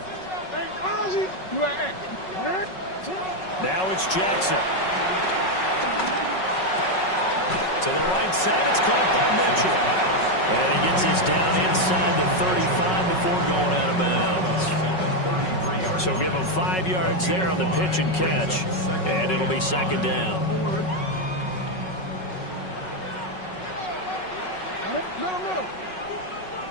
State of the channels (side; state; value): right; late; 5.4 ms